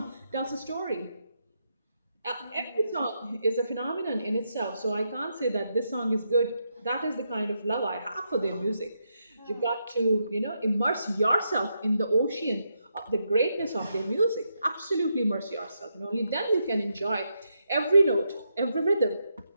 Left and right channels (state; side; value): inverted; both; correlation -0.82